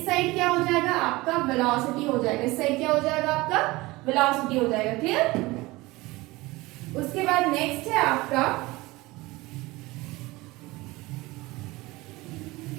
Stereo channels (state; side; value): quieter; left; 21.0 dB